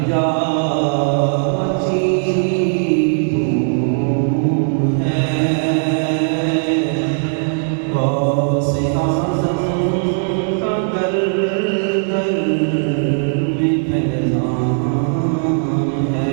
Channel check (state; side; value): silent; left; digital silence